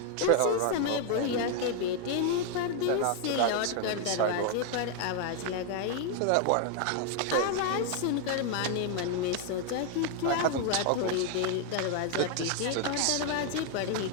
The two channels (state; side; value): different; both; correlation 0.00